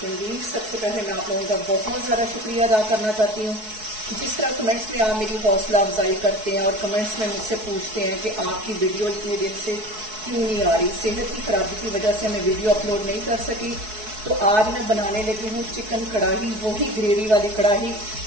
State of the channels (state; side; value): late; left; 4.7 ms